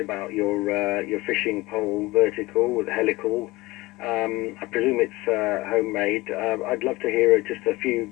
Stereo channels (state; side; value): quieter; right; 20.6 dB